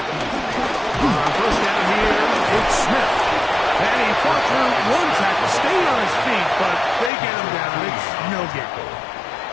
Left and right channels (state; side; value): drops out; right; at 7.1 s